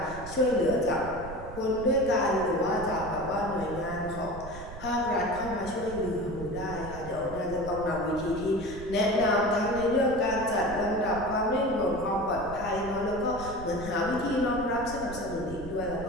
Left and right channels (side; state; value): right; noise; rumble, 12 dB below the sound